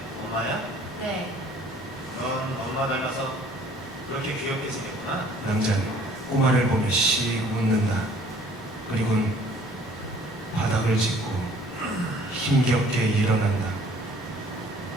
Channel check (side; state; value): both; normal; correlation 0.55